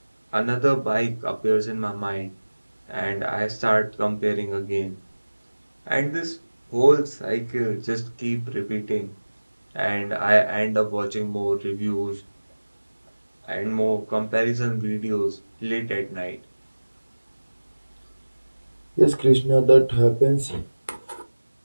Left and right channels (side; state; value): both; inverted; correlation -1.00